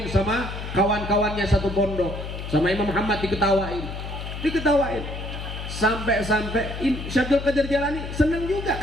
sama kawan-kawannya satu pondok, sama Imam Muhammad diketawain. Sampai Syekh Abdul Qadir Jailani seneng juga,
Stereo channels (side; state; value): left; noise; hum, 8 dB below the sound